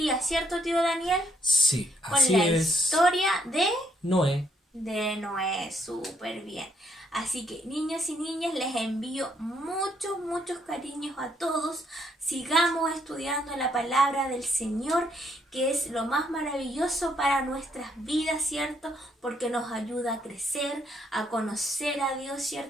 ¿cierto, tío Daniel? Sí, Con así la es. historia de Noé. Noé, súper bien. Así que niños y niñas, les envío muchos cariños a todos. Sigamos estudiando la palabra del Señor, que es lo más maravilloso para nuestras vidas, ¿cierto? Porque nos ayuda a crecer, a conocer a Dios,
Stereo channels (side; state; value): both; normal; correlation 0.72